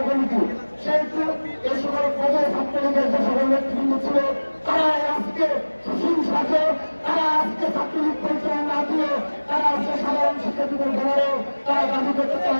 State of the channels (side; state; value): both; inverted; correlation -1.00